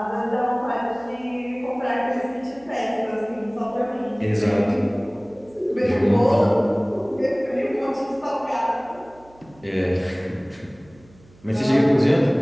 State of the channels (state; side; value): noise; right; hum, 27 dB below the sound